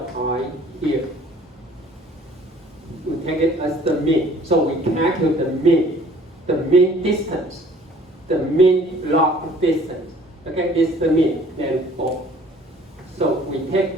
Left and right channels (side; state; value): both; normal; correlation 0.53